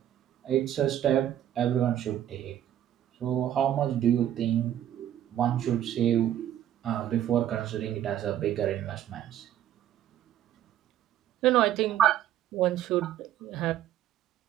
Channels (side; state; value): left; quieter; 11.4 dB